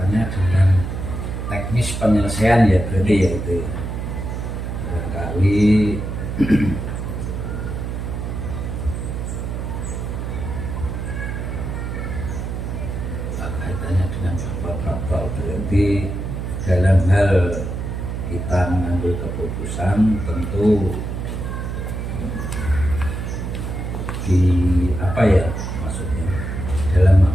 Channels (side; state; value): right; noise; hum, 4 dB below the sound